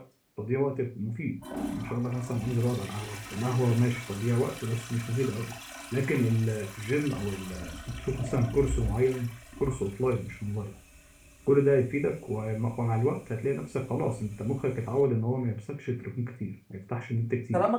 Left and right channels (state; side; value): identical; both; correlation 1.00